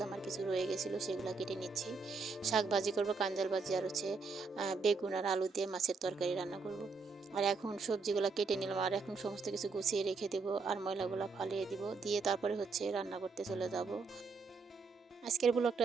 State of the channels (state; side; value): quieter; left; 4.5 dB